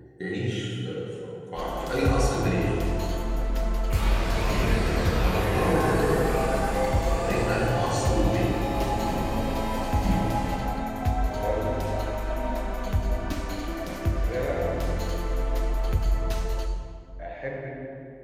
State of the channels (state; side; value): identical; both; correlation 1.00